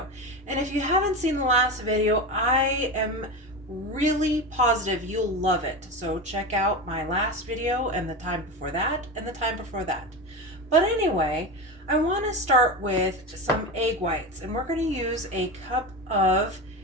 And if you haven't seen the last video, I am really positive you'll love it. So check out my last video and the time before that and the time before that. But anyway, I want to start with some egg whites, and we're going to use a cup of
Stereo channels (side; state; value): both; normal; correlation 0.22